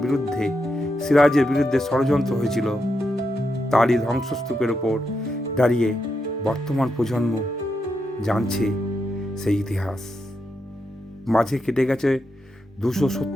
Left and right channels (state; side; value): normal; both; correlation 0.84